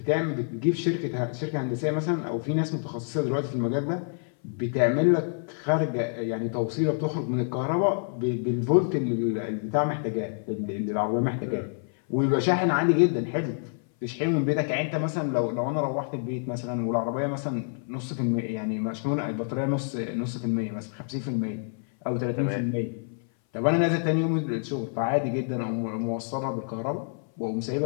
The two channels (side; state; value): right; silent; 57 dB below the other